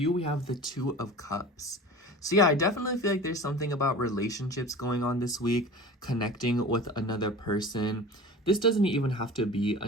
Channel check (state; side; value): normal; both; correlation 0.37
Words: we have the Two of Cups. So yeah, I definitely feel like there's something about relationships going on this week, connecting with another person. This doesn't even have to be